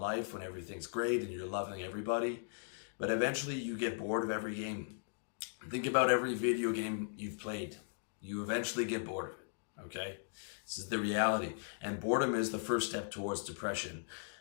when everything's great and you're loving everybody. But eventually you get bored of every game. Think about every video game you've played. You eventually get bored of it, okay? This is the reality. And boredom is the first step towards depression.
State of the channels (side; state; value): right; silent; digital silence